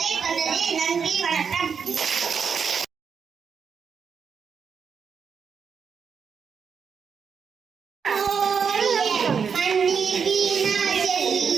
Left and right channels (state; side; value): quieter; left; 6.4 dB